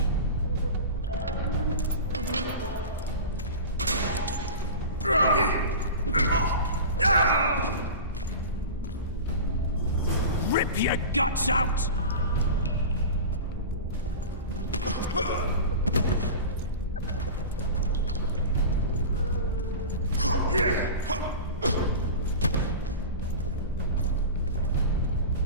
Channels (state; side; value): inverted; both; correlation -0.30